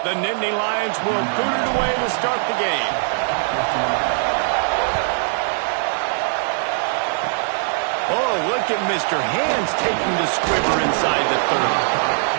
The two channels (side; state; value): left; silent; digital silence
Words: The Nittany Lions will boot it away to start the game. Oh, look at Mr. Hands taking the squibber inside the 30.